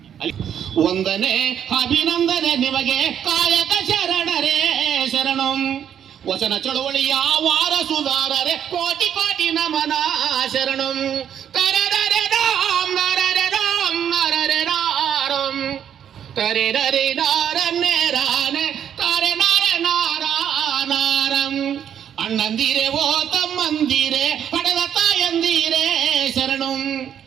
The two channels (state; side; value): quieter; left; 9.2 dB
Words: ಒಂದನೇ ಅಭಿನಂದನೆ ನಿಮಗೆ ಕಾಯಕ ಶರಣರೇ ಶರಣು. ವಚನ ಚಳುವಳಿಯ ವಾರಸುದಾರರೇ ಕೋಟಿ ಕೋಟಿ ನಮನ ಶರಣು. ಕರದರೆ ರಾಮ್ ನರರೆ ರಾಮ್ ನರರೆ ರಾರಂ ಕರೆ ರರೆ ನಾರನ್ನೇ ರಾನೆ ಕರೆ ನರೆ ನಾರಾನಾರಂ. ಅಣ್ಣಂದಿರೆ ಓ ತಮ್ಮಂದಿರೆ ಪಡೆದ ತಾಯಂದಿರೆ ಶರಣು.